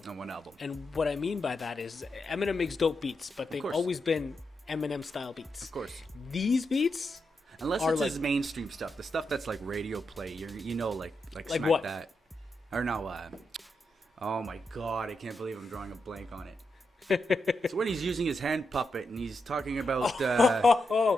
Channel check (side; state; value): both; normal; correlation 0.85